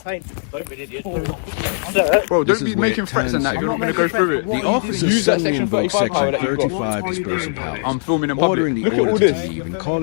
Bro, This don't is be where making it threats and that if turns you're not going to go through it. The officer Use that suddenly Section invokes 35 Section that you've got. 35 What are you dispersal doing? powers, I'm filming in public. ordering the Look at all auditor to this. leave and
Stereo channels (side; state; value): right; silent; digital silence